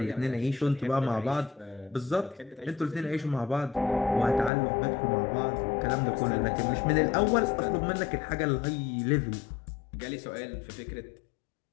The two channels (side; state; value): right; drops out; at 4.5 s